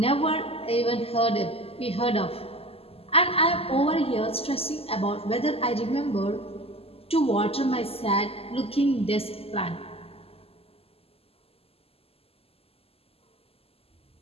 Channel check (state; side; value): late; right; 0.28 ms